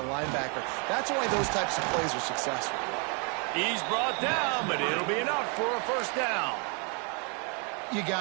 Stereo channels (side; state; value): left; quieter; 35.6 dB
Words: linebacker. That's why those types of plays are successful. He's brought down, but it'll be enough for a 1st down. You